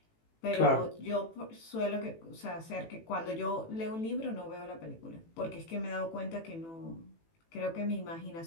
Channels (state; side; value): late; right; 18 ms